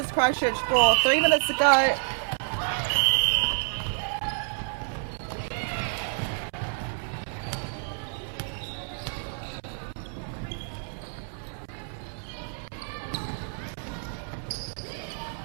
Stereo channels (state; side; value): silent; left; 59 dB below the other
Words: Christchurch 4. 3 minutes to go.